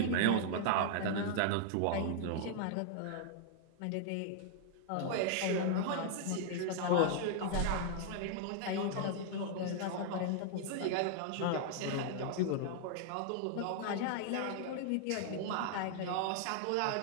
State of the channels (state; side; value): different; both; correlation 0.00